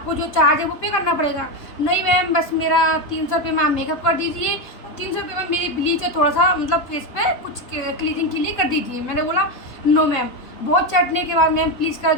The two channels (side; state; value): right; late; 3.8 ms